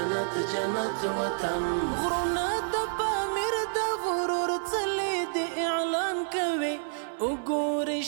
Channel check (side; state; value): left; silent; 59 dB below the other